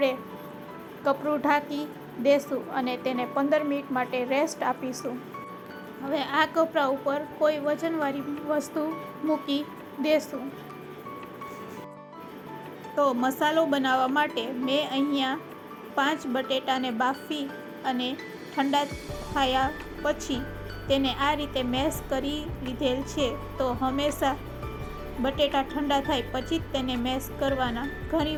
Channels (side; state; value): both; identical; correlation 1.00